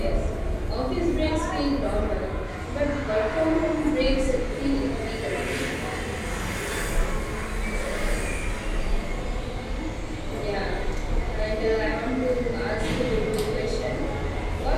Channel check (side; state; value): both; identical; correlation 1.00